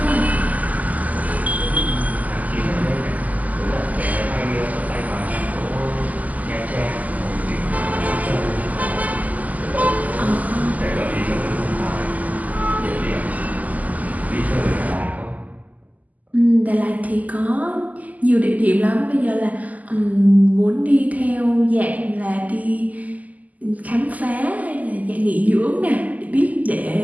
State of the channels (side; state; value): left; late; 0.077 ms